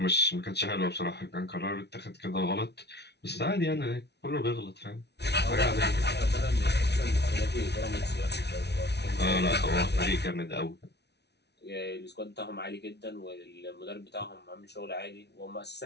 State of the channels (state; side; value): late; right; 0.49 ms